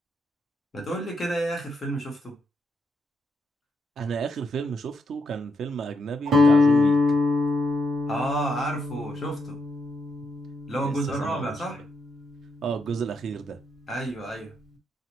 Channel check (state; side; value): normal; both; correlation 0.80